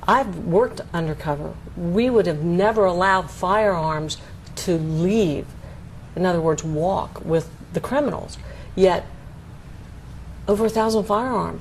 I've worked undercover. We would have never allowed firearms to leave, in other words, walk with the criminals. Yet, over 1,000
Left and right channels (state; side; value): identical; both; correlation 1.00